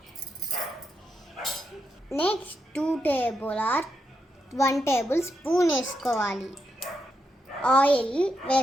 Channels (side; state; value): both; normal; correlation 0.83